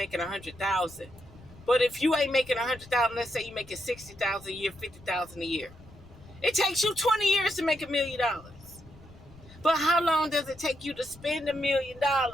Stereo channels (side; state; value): left; noise; rumble, 21 dB below the sound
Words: 100,000. But if you ain't making 100,000, let's say you making 60,000 a year, 50,000 a year. It takes you 20 years to make $1 million. But how long does it take you to spend $1 million?